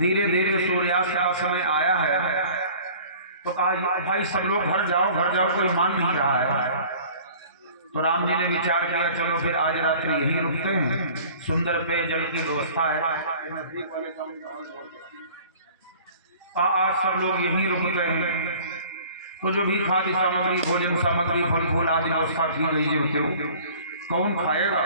धीरे सूर्यास्त का समय आया है, तो कहा भाई सब लोग घर जाओ, कोई मान नहीं रहा है। तो राम जी ने विचार किया चलो फिर आज रात्रि यहीं रुकते हैं, सुंदर पेयजल की व्यवस्था है, आज सब लोग यहीं रुकते हैं। तो जो भी खाद्य सामग्री, भोजन सामग्री, फल फूल आदि व्यवस्था की गई होते कौन खाएगा।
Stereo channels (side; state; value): both; inverted; correlation -0.48